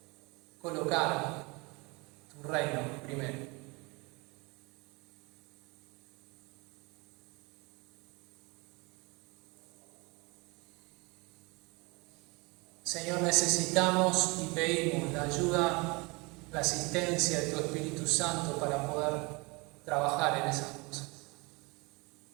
colocar tu reino primero. Señor, necesitamos y pedimos la ayuda, la asistencia de tu Espíritu Santo para poder trabajar en esas cosas.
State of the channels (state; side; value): quieter; left; 27.1 dB